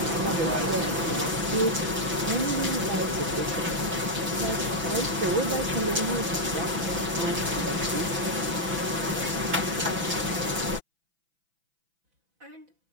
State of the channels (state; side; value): late; left; 6.0 ms